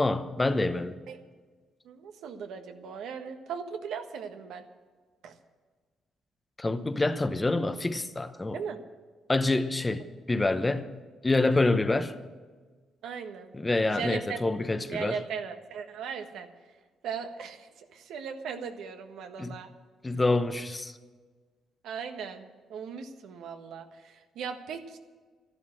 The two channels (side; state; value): both; normal; correlation 0.91